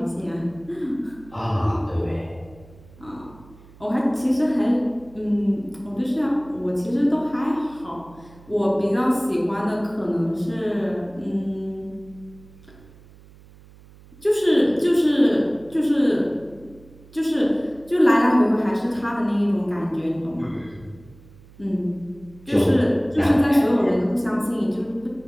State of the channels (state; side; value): noise; right; hum, 23 dB below the sound